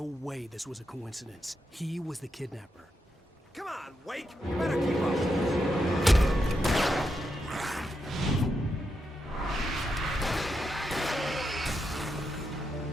way this was a coincidence. He was the kidnapper. Come on, Wake! You better keep up!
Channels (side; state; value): both; normal; correlation 0.84